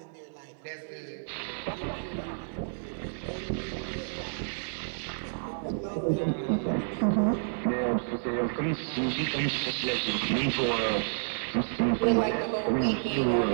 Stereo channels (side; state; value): left; silent; digital silence